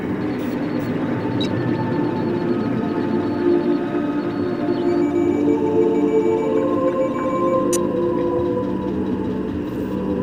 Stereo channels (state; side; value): noise; left; rumble, 24 dB below the sound